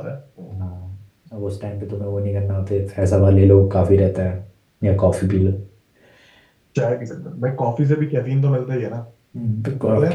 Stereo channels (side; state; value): both; identical; correlation 1.00